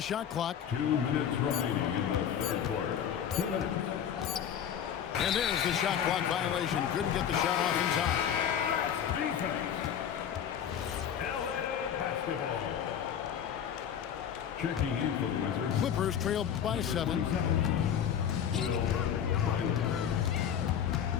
shot clock. 2 minutes remaining in the third quarter. 2 minutes. And there's the shot clock violation. Couldn't get the shot off in time. Defense. LA basketball. Checking in for the Wizards. Clippers trail by 7.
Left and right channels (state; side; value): quieter; right; 8.9 dB